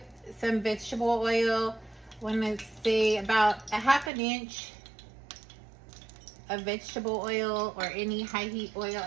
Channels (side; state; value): left; drops out; at 4.1 s